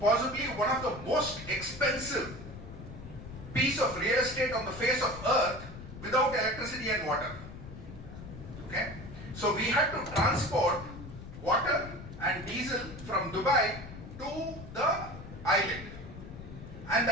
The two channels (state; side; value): noise; left; rumble, 13 dB below the sound